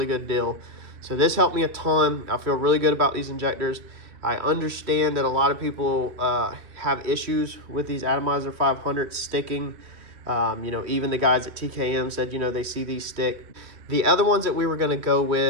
good deal. So this helped me a ton. I feel really good about these injectors. I understand that a lot of people have issues with these Atomizer 500s sticking. You know, even the guys at TKM said, you know, they see these stick. The other ones that we were going to go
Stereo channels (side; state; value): left; late; 3.1 ms